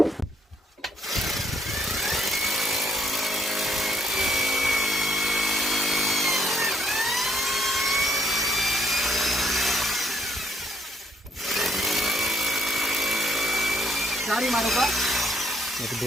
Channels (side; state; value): both; normal; correlation 0.70